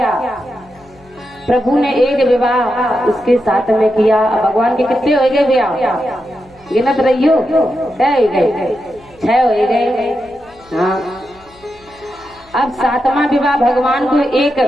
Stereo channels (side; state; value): left; noise; hum, 28 dB below the sound